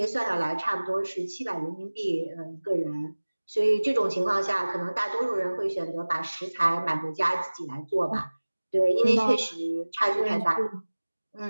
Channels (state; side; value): inverted; both; correlation -1.00